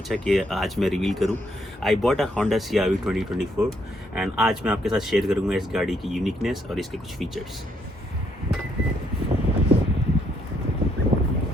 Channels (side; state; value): both; normal; correlation 0.72